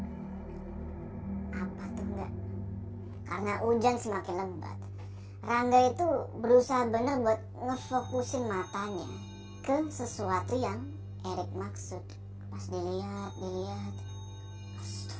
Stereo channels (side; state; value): both; identical; correlation 1.00